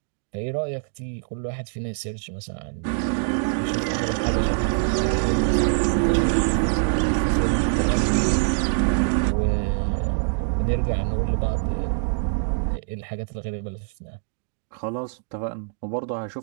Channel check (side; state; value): left; silent; digital silence